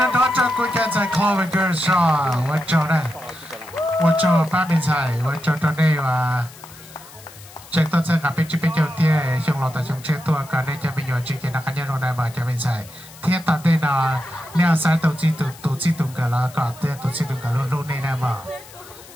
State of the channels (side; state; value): left; noise; hiss, 20 dB below the sound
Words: 了多久？估计在考完个啥？我找呢，我找八面菜，我找到那个。Chắc tôi sẽ gặp bên chỗ tia trong lò tại trong chơi tua cả đây cho mình nhỏ chỉ cái nào cá nhân trong này mà cho mình xài thiết tập đây là neo sai tổ chức tung cả là cả tia tổ chức tung cả luôn luôn này nè mà